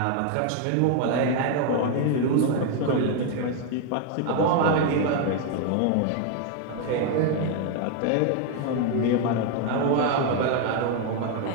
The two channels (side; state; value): both; different; correlation 0.01